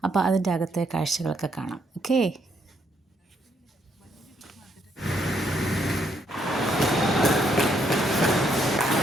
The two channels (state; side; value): normal; both; correlation 0.73